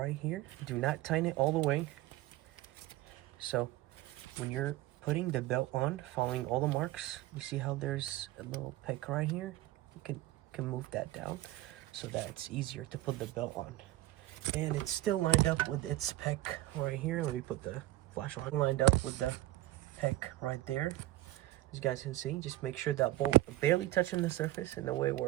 here, do not tighten it all the way. So when you're putting the belt on, following all the marks, you see how there's a little peck right here? You can move that down so that it's easier to put the belt on. And it's still lined up with its peck right here. Let me put the flashlight lined up with the peck right there. As you guys can see, just make sure that bolt barely touching the surface in a way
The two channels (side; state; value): left; quieter; 16.5 dB